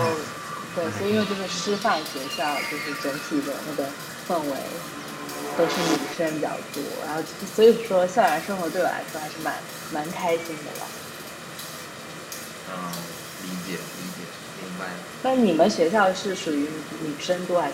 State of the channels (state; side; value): identical; both; correlation 1.00